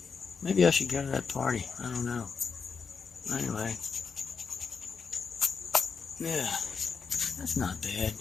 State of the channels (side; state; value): right; quieter; 5.5 dB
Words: Maybe I should go to that party. I don't know. Anyway. Yeah. That's not bad.